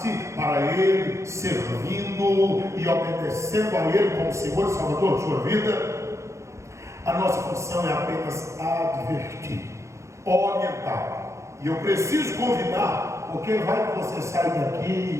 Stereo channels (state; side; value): late; left; 0.14 ms